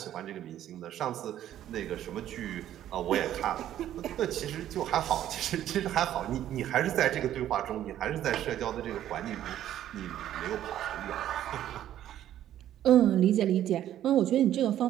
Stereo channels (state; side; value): quieter; left; 11.8 dB